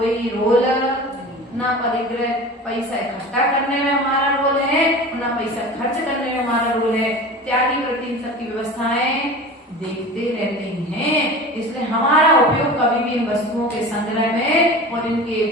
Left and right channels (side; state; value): both; normal; correlation 0.35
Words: रोल ना परिग्रह पैसा इकट्ठा करने में हमारा रोल है, ना पैसा खर्च करने में हमारा रोल है। त्यागी प्रति इन सबकी व्यवस्थाएं देखते रहते हैं, इसलिए हमारा उपयोग कभी भी इन वस्तुओं के संग्रह में और इनके